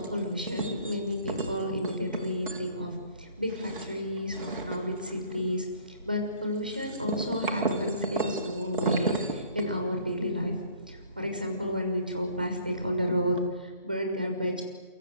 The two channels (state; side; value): inverted; both; correlation -0.55